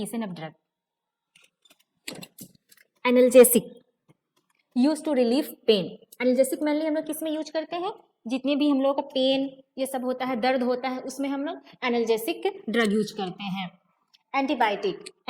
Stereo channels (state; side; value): identical; both; correlation 1.00